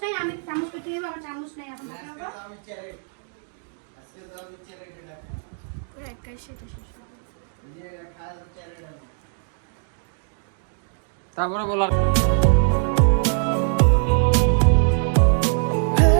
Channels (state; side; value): silent; left; 57 dB below the other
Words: নাই, আমি চামচ কেটে নেবো, আমার চামচ নাই এখন দেখো। পুরো একাই সেটা শেষ হবে। তারপরে বলার